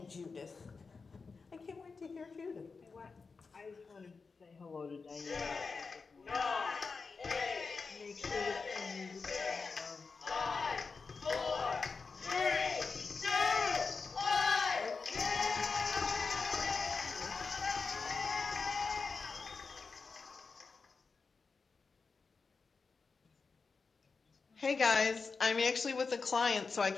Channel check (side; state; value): right; quieter; 4.7 dB